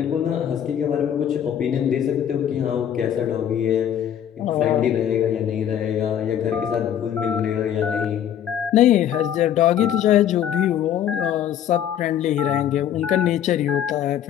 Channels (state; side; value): quieter; right; 9.9 dB